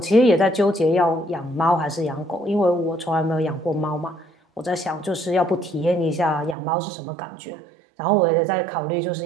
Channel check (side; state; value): left; drops out; at 6.6 s